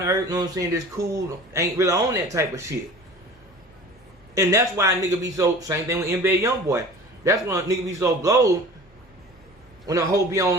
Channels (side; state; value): both; normal; correlation 0.41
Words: to earth, you know what I'm saying, just cool, ain't really on that type of shit. And that's why a nigga be so, same thing with NBA Youngboy. That's when a nigga be so blowed when a hoe be